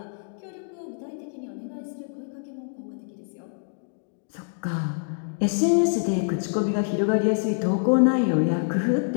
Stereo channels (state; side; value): silent; right; digital silence